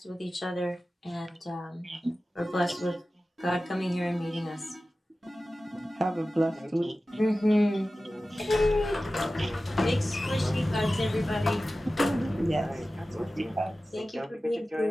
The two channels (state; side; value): normal; both; correlation 0.95